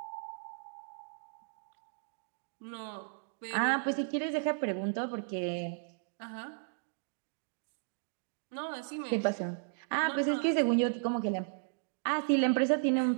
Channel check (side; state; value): left; silent; digital silence